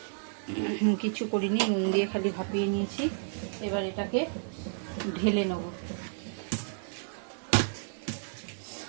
কিছু করিনি, নুন দিয়ে খালি ভাপিয়ে নিয়েছি। এবার এটাকে ঢেলে নেব।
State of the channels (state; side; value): silent; left; digital silence